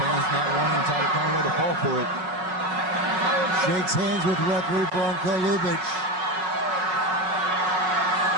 not wanting Tiger Conway to fall for it. Shakes hands with referee Bronco Lubitsch.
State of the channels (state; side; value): late; left; 5.4 ms